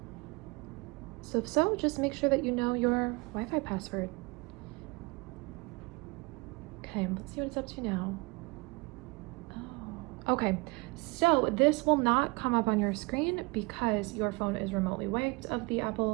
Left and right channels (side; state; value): left; quieter; 27.3 dB